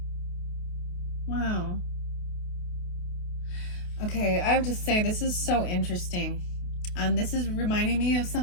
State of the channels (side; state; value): right; late; 28 ms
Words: Wow. Okay, I have to say, this is so interesting. This is reminding me of